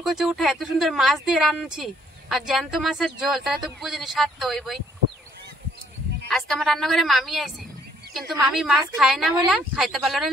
উঠে এত সুন্দর মাছ দিয়ে রান্নাছি, আর জ্যান্ত মাছের ঝোল, তাহলে তো বুঝিনি স্বাদ তো হইবই। আজকে আমার রান্নাঘরে মামি আইছে, কিন্তু মামি মাছ খায় না বলে খাইতে পারলো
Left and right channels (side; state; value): both; normal; correlation 0.66